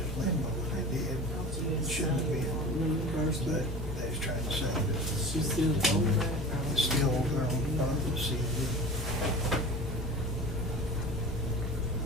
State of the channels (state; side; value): normal; both; correlation 0.36